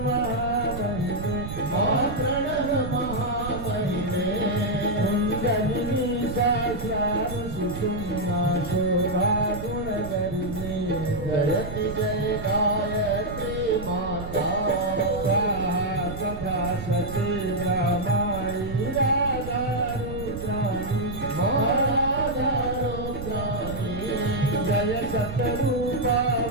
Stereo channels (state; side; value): noise; right; rumble, 8 dB below the sound